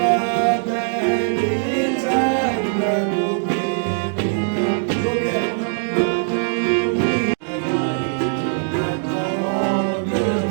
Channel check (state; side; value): silent; left; digital silence